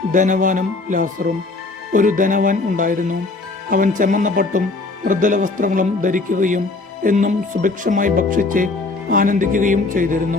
ധനവാനും ലാസറും. ഒരു ധനവാൻ ഉണ്ടായിരുന്നു. അവൻ ചെമ്മന്ന പട്ടും മൃദുല വസ്ത്രങ്ങളും ധരിക്കുകയും എന്നും സുഭിക്ഷമായി ഭക്ഷിച്ച് ആനന്ദിക്കുകയും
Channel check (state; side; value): quieter; right; 3.5 dB